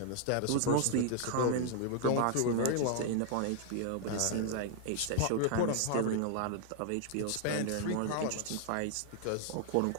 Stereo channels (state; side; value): different; both; correlation 0.00